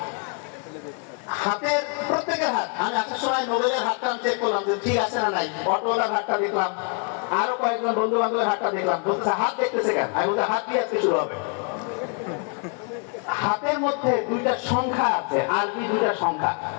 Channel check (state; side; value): quieter; right; 38.3 dB